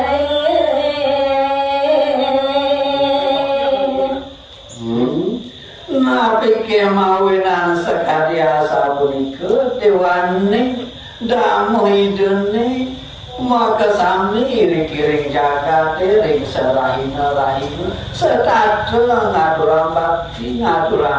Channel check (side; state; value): both; identical; correlation 1.00